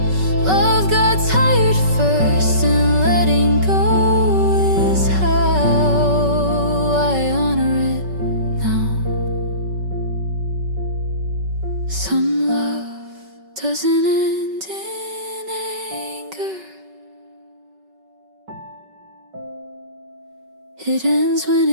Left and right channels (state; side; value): late; left; 5.3 ms